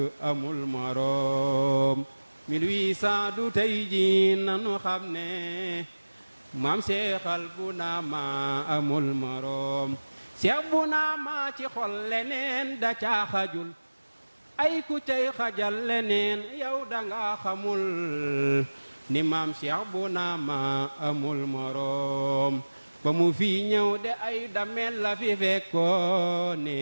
amul moroom 1800 du tey ji nanu xam ne maam Cheikhal bu naama amul moroom Cheikh bu naama ci xol leneen da caa xajul ay ku cay xajal leneen yow danga xamul ni maam Cheikh bu naama amul moroom ba mu fi ñëw de ay damel la fi fekkoone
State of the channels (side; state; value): both; inverted; correlation -1.00